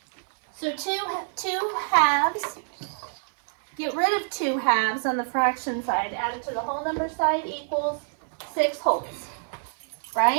So two halves, get rid of 2 halves on the fraction side, add it to the whole number side equals 6 wholes,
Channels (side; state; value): left; silent; digital silence